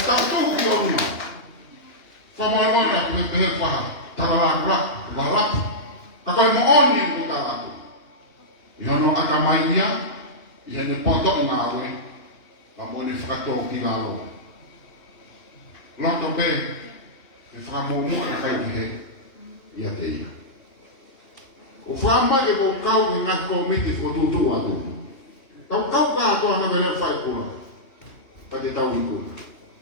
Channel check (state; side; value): late; right; 2.9 ms